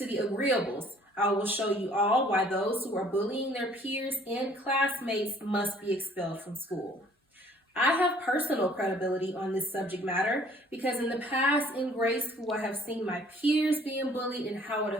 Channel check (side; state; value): both; normal; correlation 0.57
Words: the agreeables, I will show you all why those who are bullying their peers and classmates must be expelled from school. I have personal credibility on this subject matter because in the past in grade school I have seen my peers being bullied and how it